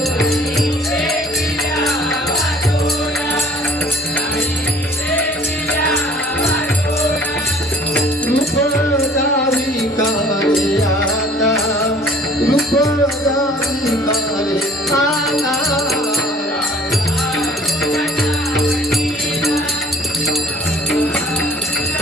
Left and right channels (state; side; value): normal; both; correlation 0.54